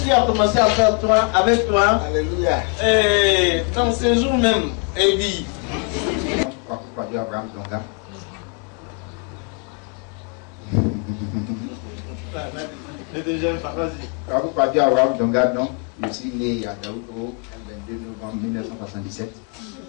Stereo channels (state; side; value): quieter; right; 34.1 dB